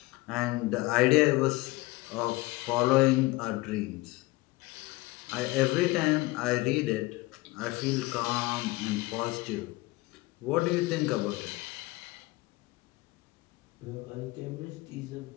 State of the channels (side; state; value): right; quieter; 21.2 dB